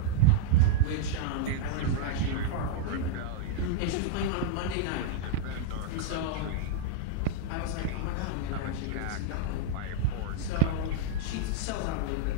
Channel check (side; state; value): both; different; correlation -0.01